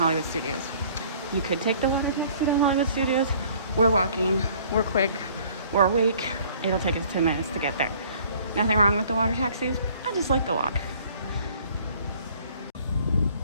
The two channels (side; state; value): both; inverted; correlation -0.55